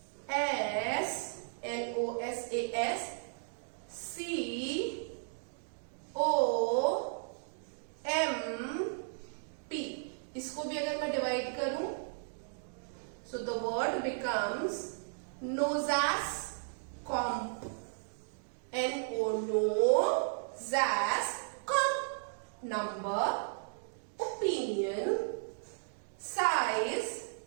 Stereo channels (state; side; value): silent; left; digital silence